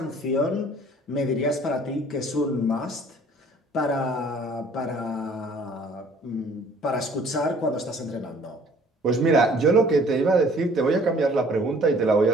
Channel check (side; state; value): both; normal; correlation 0.55